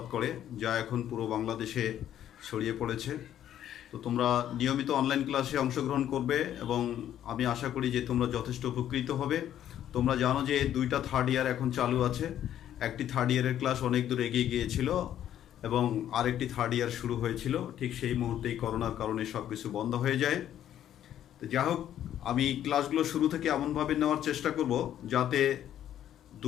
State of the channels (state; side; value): quieter; right; 11.0 dB